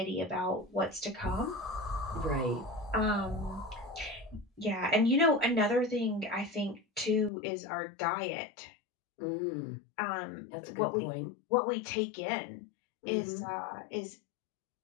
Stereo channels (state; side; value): drops out; right; at 7.3 s